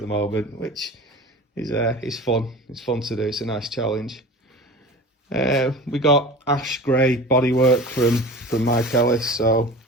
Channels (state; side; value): normal; both; correlation 0.36